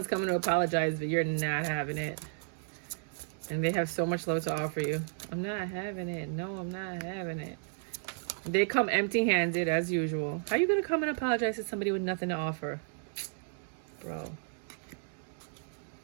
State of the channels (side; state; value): left; silent; digital silence